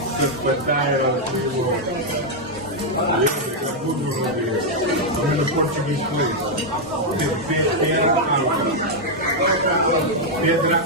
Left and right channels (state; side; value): normal; both; correlation -0.01